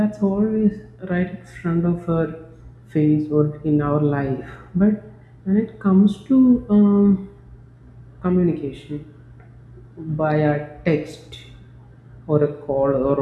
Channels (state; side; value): identical; both; correlation 1.00